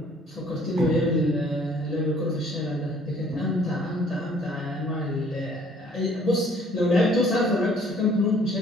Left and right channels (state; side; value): normal; both; correlation 0.58